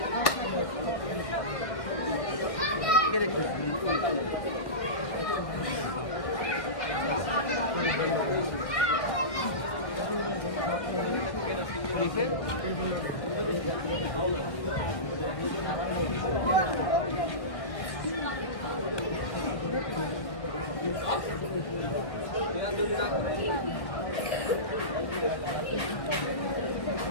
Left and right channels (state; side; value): late; right; 1.8 ms